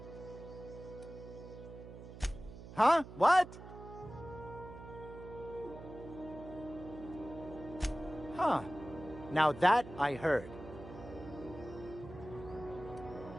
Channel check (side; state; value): right; noise; hum, 14 dB below the sound